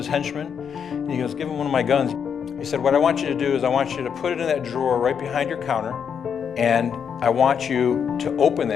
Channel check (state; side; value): quieter; right; 7.3 dB